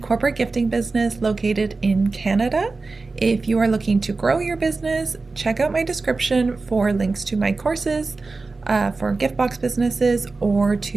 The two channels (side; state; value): left; quieter; 3.8 dB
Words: gifting business located in Canada. If you are looking to grow your business, check out my description for links to my courses for gift box businesses or